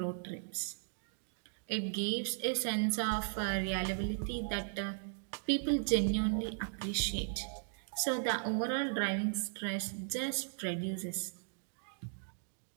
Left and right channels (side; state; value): left; silent; digital silence